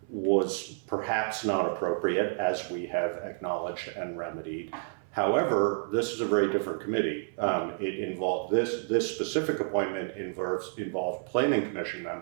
was perhaps not appropriate, as we have acknowledged and remedied. However, this is a very different committee. It involved, this specific appointment involved planning commission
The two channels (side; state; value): left; silent; 58 dB below the other